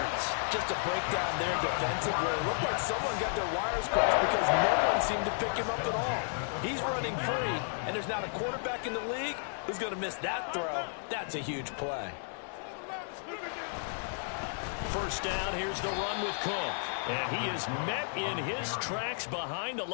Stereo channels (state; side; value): silent; right; digital silence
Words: Just a breakdown there defensively. It looked like someone got their wires crossed because no one seemed to pick him up at all. He's running free, and there's not a quarterback in the league who's going to miss that throw. That's a huge play. First down, here's the run with Cook. And he is met in his tracks behind the